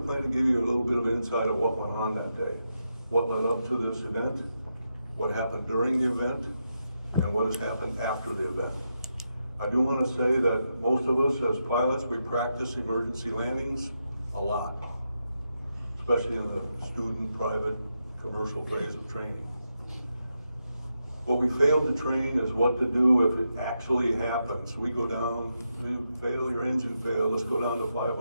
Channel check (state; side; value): inverted; both; correlation -0.85